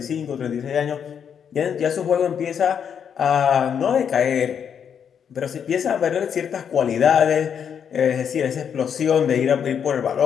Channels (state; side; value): quieter; right; 7.8 dB